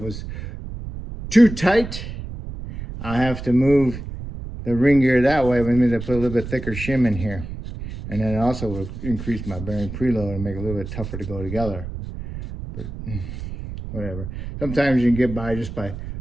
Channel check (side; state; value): right; noise; rumble, 9 dB below the sound